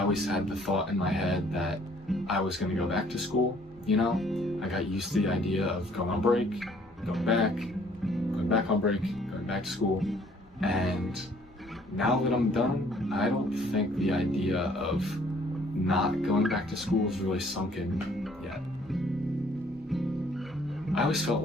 always had the thought in my head that I was going to go back to school. You know, I got used to the idea of going on break, going back on break, going back to school. And now that I'm done, I don't think the idea of not going back to school is really sunk in yet. I always felt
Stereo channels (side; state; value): both; normal; correlation 0.60